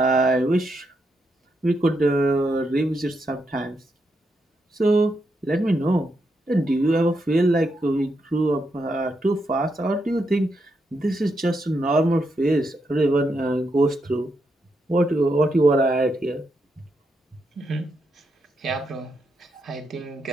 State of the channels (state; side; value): normal; both; correlation 0.82